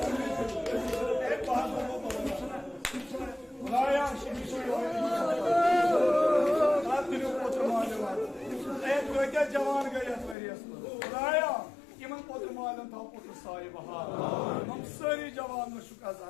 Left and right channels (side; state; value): right; drops out; at 10.4 s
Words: Cavan gayet veriyorsun. Buraya kimin potu malın tam potu sahibi ha. Nam sarı cavanlı şu